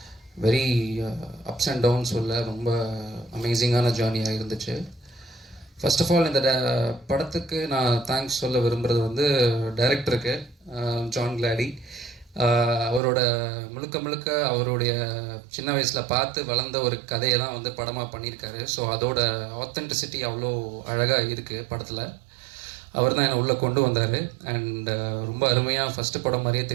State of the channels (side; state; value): left; drops out; at 13.0 s